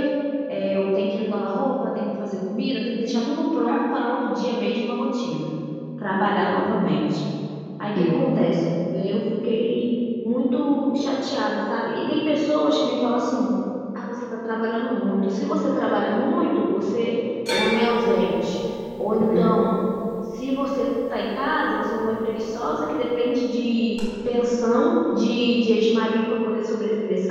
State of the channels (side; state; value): both; identical; correlation 1.00